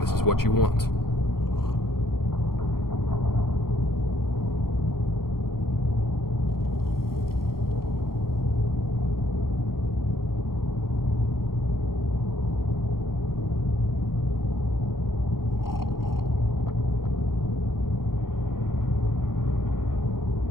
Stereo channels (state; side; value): late; right; 0.93 ms